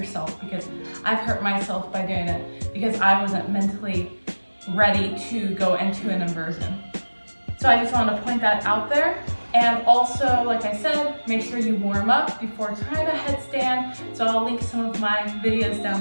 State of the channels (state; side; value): inverted; both; correlation -1.00